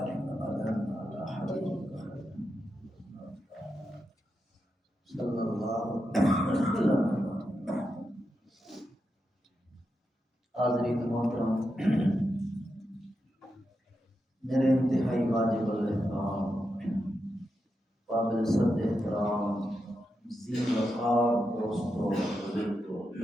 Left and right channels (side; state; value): both; normal; correlation 0.87